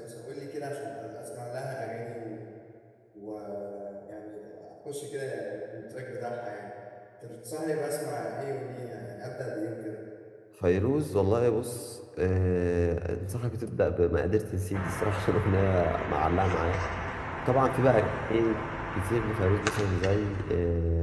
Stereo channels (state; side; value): identical; both; correlation 1.00